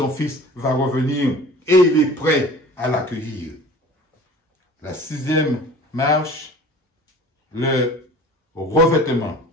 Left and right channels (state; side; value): normal; both; correlation 0.43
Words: fils va revenir et il est prêt à l'accueillir. La 6e marche, le revêtement.